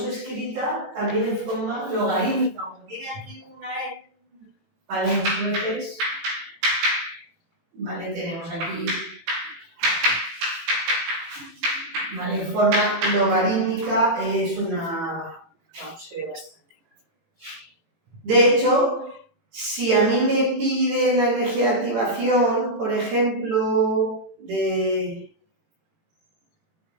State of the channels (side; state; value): left; late; 18 ms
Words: escrita también en forma logarítmica, como tiene aquí una E, ¿vale? Muchas veces, ¿vale? Tenemos aquí, ¿vale? En forma logarítmica es una, vamos, se ve bastante. De hecho, si a mí me pide la energía de activación, por ejemplo, de